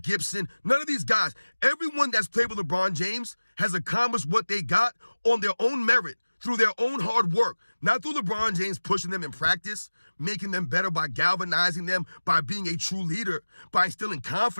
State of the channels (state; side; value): inverted; both; correlation -1.00